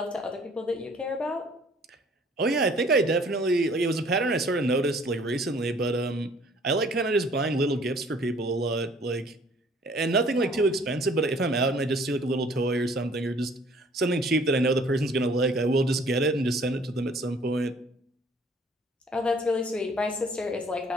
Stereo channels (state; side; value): normal; both; correlation 0.56